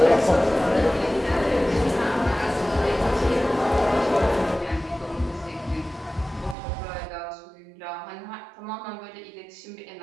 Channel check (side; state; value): left; drops out; at 6.6 s